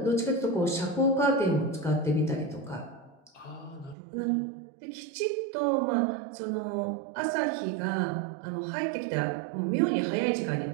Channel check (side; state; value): left; drops out; at 4.0 s